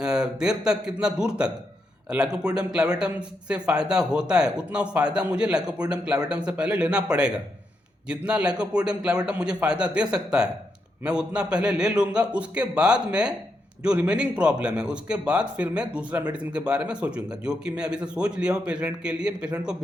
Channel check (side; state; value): both; normal; correlation 0.82